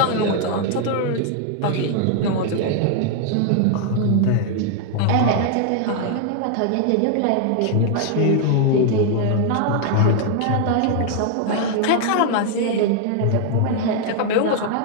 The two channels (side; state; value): both; different; correlation 0.00